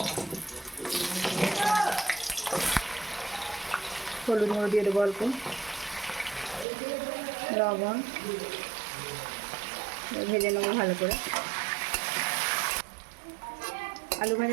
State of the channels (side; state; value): left; drops out; at 6.7 s